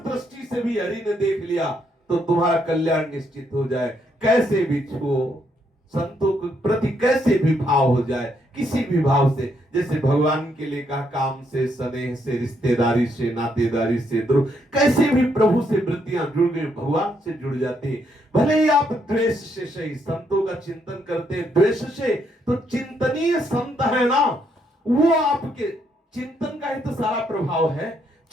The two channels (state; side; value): normal; both; correlation 0.74